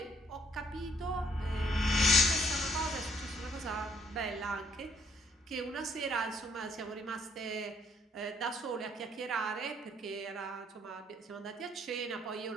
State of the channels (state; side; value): normal; both; correlation 0.67